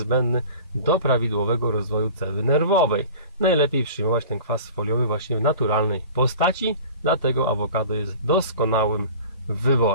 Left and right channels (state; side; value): inverted; both; correlation -0.41